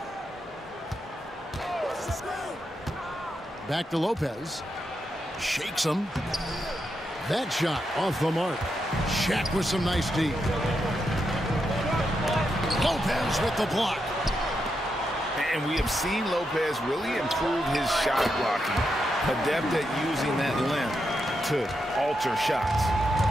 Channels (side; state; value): both; normal; correlation 0.84